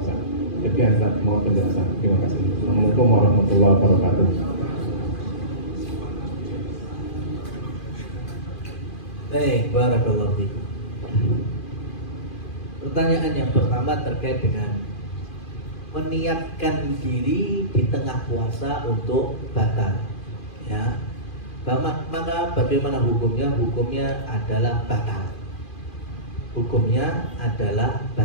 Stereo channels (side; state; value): right; late; 2.4 ms